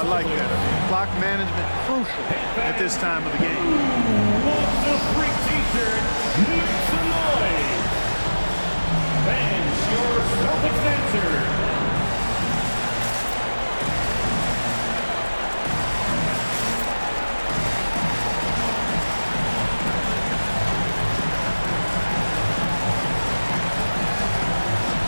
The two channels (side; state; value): both; inverted; correlation -1.00